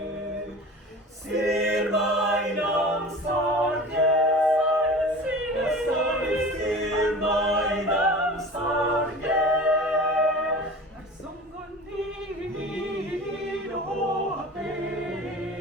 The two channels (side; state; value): both; normal; correlation 0.37